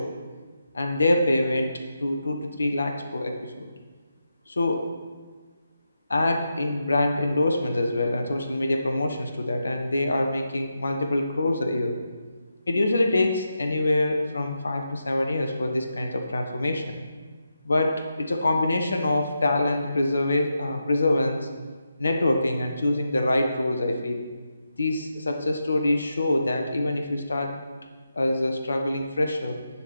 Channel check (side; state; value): both; inverted; correlation -0.87